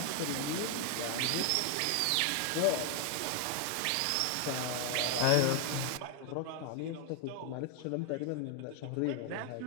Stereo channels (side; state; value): both; different; correlation 0.00